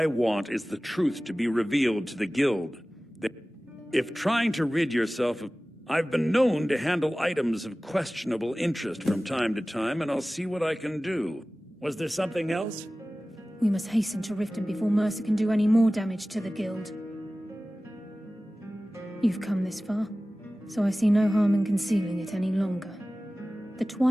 want is the truth to be revealed to the Guild. If trying to rid yourself of... I've been known to handle items of questionable interest from time to time, and I'll see what I can do. Was there something else? We must hasten to Riften before Mercer can do any more damage to the Guild. You've come this far, so I see no harm in concealing it any longer. The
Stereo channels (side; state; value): both; normal; correlation 0.97